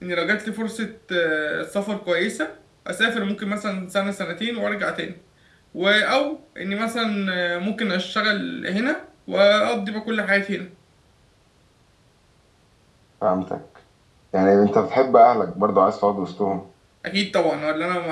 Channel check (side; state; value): both; identical; correlation 1.00